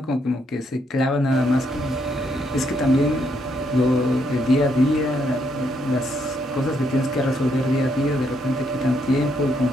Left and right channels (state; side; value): normal; both; correlation 0.74